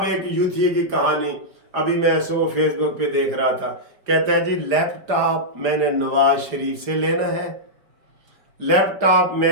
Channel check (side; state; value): left; late; 4.9 ms